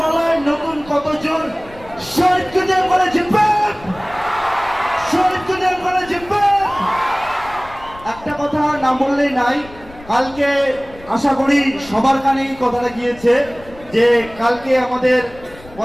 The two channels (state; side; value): noise; left; rumble, 20 dB below the sound